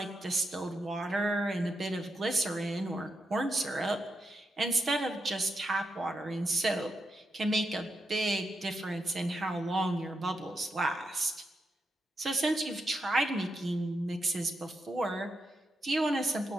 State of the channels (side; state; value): both; normal; correlation 0.84